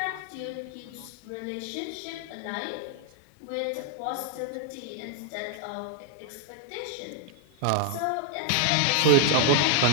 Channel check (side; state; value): both; different; correlation 0.00